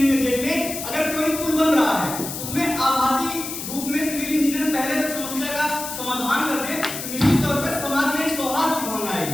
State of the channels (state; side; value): noise; left; hiss, 7 dB below the sound